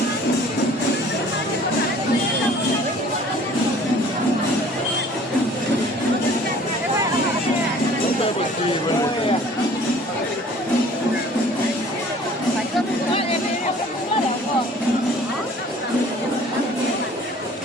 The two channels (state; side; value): normal; both; correlation 0.51